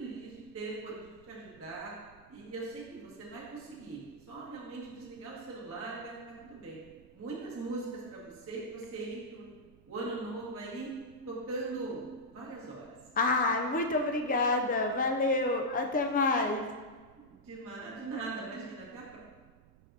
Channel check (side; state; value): right; noise; rumble, 24 dB below the sound